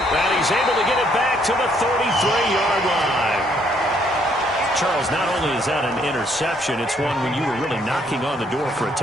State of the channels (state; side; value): normal; both; correlation 0.68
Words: he's able to get it back to the 33-yard line. Charles, not only is that an interception, it's one when you were really knocking on the door for a